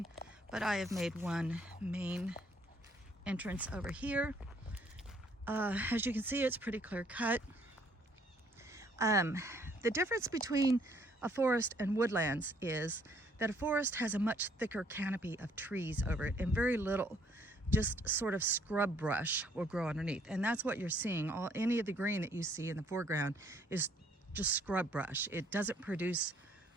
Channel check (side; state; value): both; normal; correlation 0.64